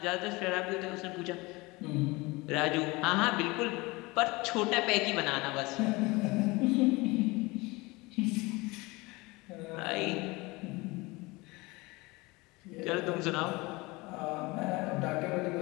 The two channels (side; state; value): right; quieter; 23.6 dB